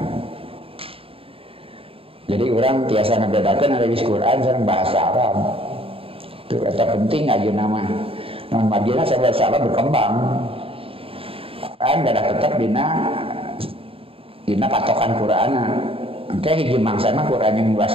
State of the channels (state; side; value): late; left; 0.27 ms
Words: Jadi orang biasa ngebedakan ada di Quran sareng bahasa Arab. Itu eta penting aja nama. Non madina saya bahasa Arab berkembang. Kan ada tetap dina patokan Quran. Oke, hiji mangsa mah Quran yang